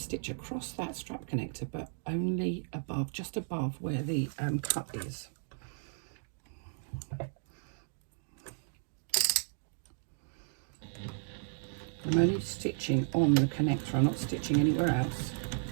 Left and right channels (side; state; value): left; silent; digital silence